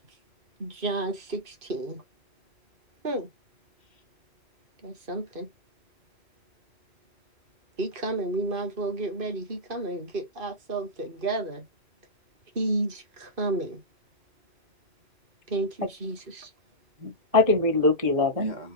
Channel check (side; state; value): left; late; 2.5 ms